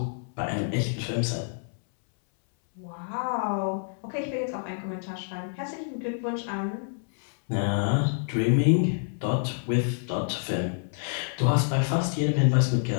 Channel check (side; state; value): right; silent; 60 dB below the other